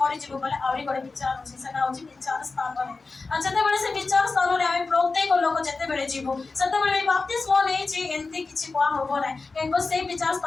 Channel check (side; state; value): right; quieter; 4.0 dB